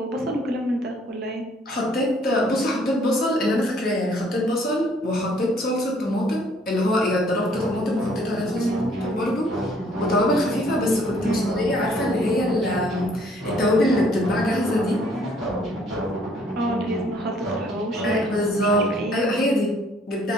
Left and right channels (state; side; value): normal; both; correlation 0.62